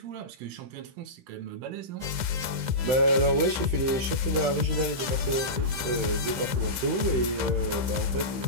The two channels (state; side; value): late; left; 15 ms